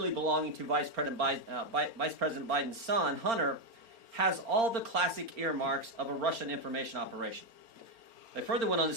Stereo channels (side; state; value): left; late; 4.4 ms